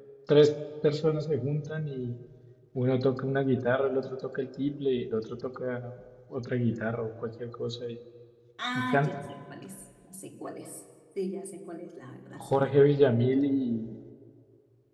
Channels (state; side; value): identical; both; correlation 1.00